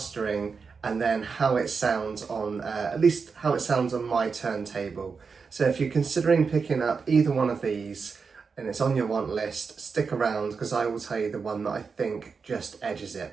and then how it sounds on, at least how it sounds on my turntable. So if you're considering picking up either one of these and it's on your want list, stick around because I will tell you the one that I think just edges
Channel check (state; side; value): quieter; left; 5.2 dB